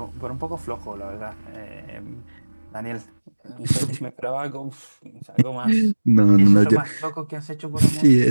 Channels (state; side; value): inverted; both; correlation -1.00